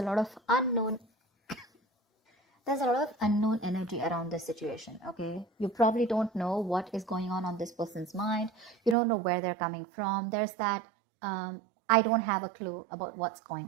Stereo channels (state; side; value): drops out; left; at 9.0 s